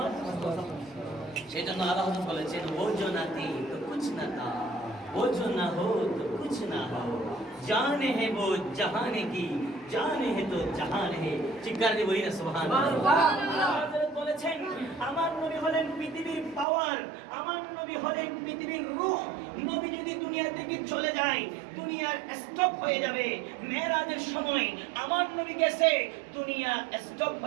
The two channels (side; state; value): left; drops out; at 16.7 s